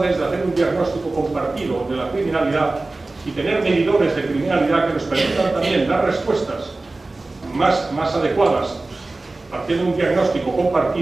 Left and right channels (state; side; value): quieter; left; 3.2 dB